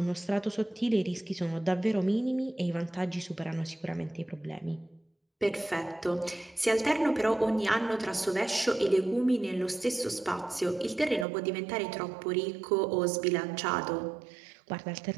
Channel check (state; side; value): drops out; left; at 11.2 s